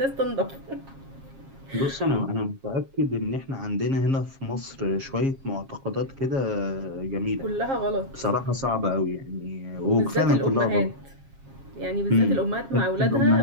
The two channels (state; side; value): late; left; 7.4 ms